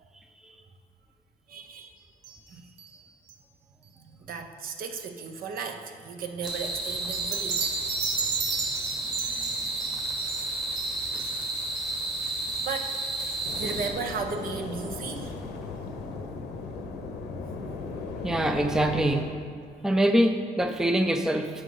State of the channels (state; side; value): normal; both; correlation 0.62